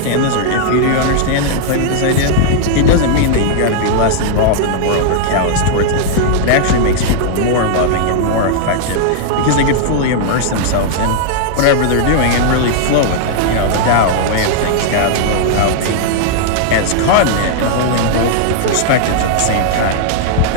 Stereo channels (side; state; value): both; different; correlation -0.01